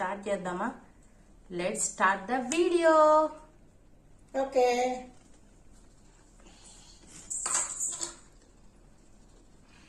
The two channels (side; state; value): both; identical; correlation 1.00